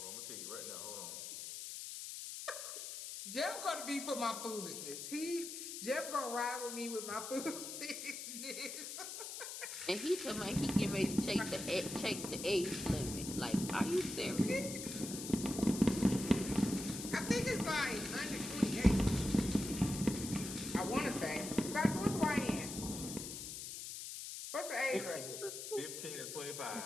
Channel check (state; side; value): noise; left; hiss, 7 dB below the sound